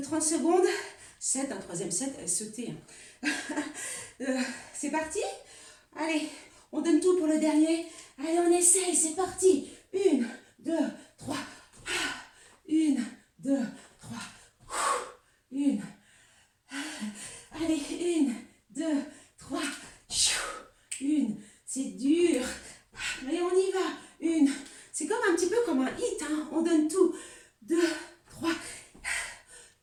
secondes. Un troisième set, sauter. C'est parti. Allez, on donne tout pour le dernier. Allez, on essaye, c'est parti. 1, 2, 3. 1, 2, 3. 1. Allez, 1, 2, 3. 1. C'est dur. Mais on y va. 1. C'est comme un petit peu comme un hit. Hein. On donne tout. 2, 3.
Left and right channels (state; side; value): identical; both; correlation 1.00